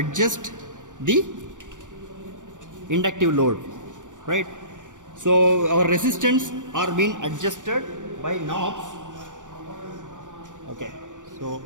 the inductive load, right? So our resistance are being adjusted by knobs. Okay, so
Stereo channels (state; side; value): late; left; 0.87 ms